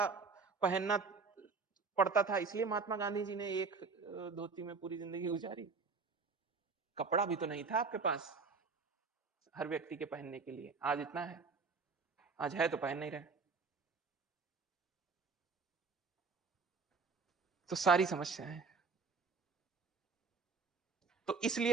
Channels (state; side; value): quieter; left; 4.6 dB